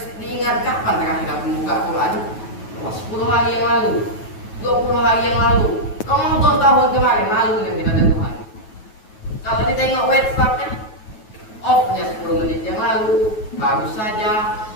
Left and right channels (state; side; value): late; right; 9.3 ms